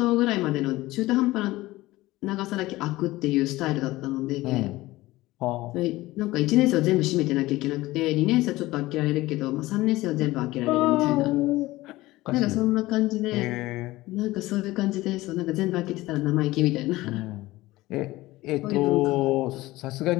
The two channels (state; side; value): quieter; right; 18.3 dB